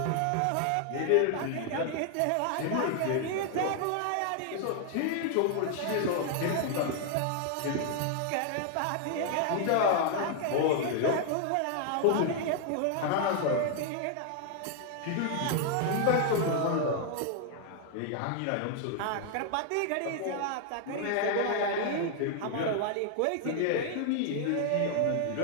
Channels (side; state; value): both; different; correlation 0.00